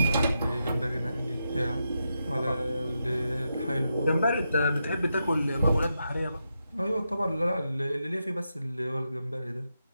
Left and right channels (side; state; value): both; inverted; correlation -0.86